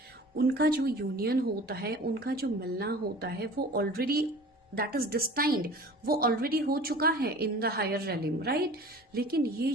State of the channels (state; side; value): normal; both; correlation 0.42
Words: उनका जो यूनियन होता है, उनका जो मिलना होता है, वो ऑलरेडी दैट इज डिस्टाइंड, वो ऑलरेडी हो चुका है इन द हायर रेलिम. राइट, लेकिन ये